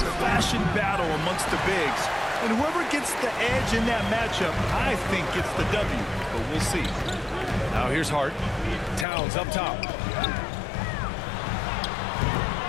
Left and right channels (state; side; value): drops out; right; at 9.1 s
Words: battle amongst the bigs. And whoever gets the edge in that matchup, I think gets the W. But we'll see. Now here's Hart. Towns up top.